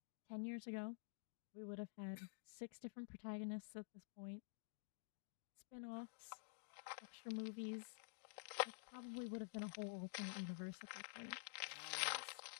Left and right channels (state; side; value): silent; right; digital silence